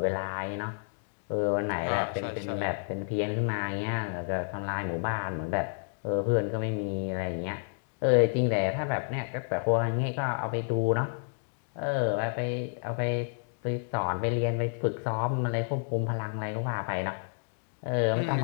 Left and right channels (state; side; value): silent; right; 58 dB below the other